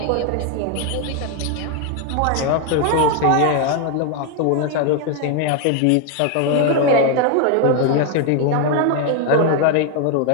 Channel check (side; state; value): both; different; correlation 0.01